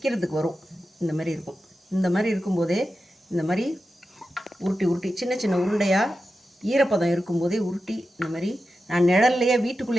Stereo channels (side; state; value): both; normal; correlation 0.91